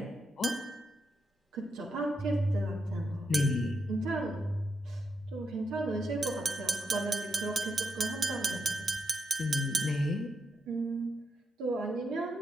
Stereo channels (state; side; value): normal; both; correlation 0.83